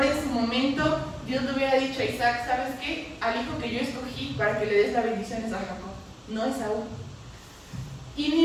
en su momento Dios le hubiera dicho a Isaac, ¿sabes qué? Al hijo que yo escogí para que le des las bendiciones a Jacob, no a Esaú. Y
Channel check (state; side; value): identical; both; correlation 1.00